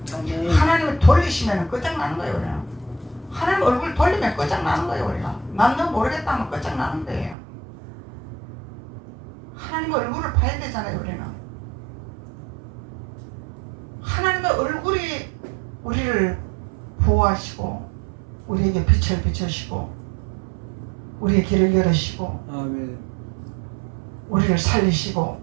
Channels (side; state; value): left; drops out; at 7.4 s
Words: 아멘. 하나님을 돌리시면 끝장나는 거예요. 우리는. 하나님 얼굴 돌리면 끝장나는 거예요. 우리가. 난 너 모르겠다 하면 끝장나는 거예요. 하나님의 얼굴을 봐야 되잖아요. 우리는. 하나님의 얼굴이 우리를 보호하시고 우리에게 빛을 비추시고 우리의 길을 열으시고 아멘. 우리를 살리시고